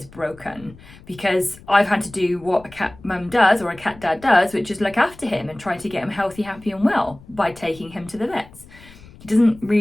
broken because I've had to do what a cat mum does or a cat dad does, which is look after him and try to get him healthy, happy and well by taking him to the vets. He doesn't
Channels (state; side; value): noise; left; rumble, 22 dB below the sound